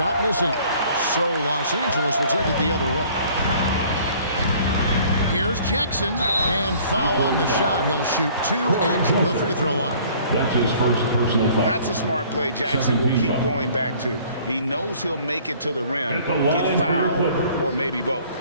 missing. So Los Angeles will take it the other way. Here's Jackson. And foul on the shot. He'll shoot 2 at the free throw line. That's his first personal foul. That's a smart play Jackson will keep going back to. He knows he'll make it to the rim, get fouled, or maybe both.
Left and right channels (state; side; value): inverted; both; correlation -0.54